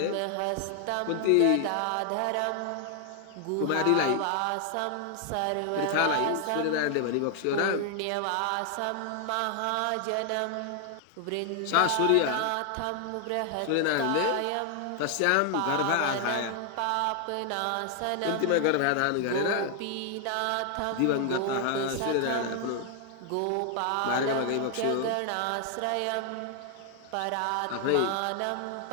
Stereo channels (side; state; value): both; different; correlation 0.00